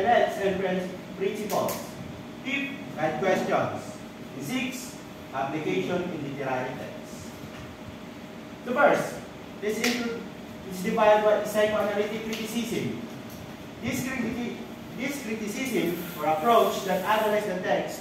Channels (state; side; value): identical; both; correlation 1.00